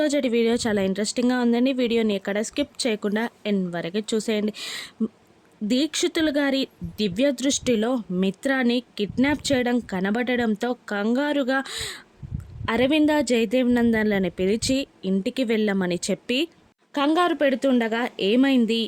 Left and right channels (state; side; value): identical; both; correlation 1.00